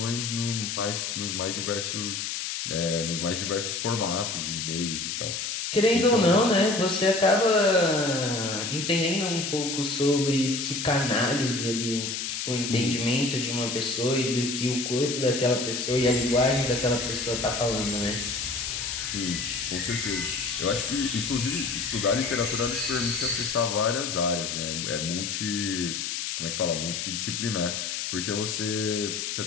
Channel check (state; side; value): noise; left; hiss, 3 dB below the sound